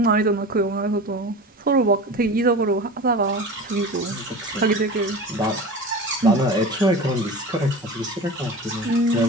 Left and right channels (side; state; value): both; normal; correlation 0.32